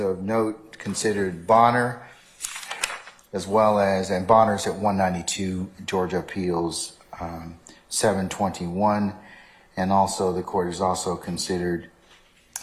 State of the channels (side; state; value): both; identical; correlation 1.00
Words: note considered Bonner, as well as, and Bonner's at 192 Georgia Appeals 721, and also the court has also considered